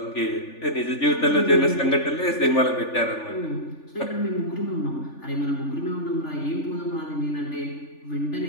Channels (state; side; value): late; right; 3.4 ms